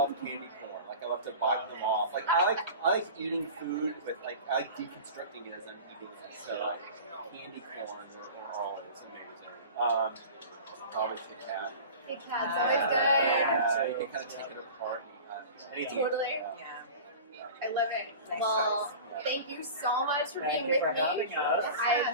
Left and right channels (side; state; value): both; inverted; correlation -0.36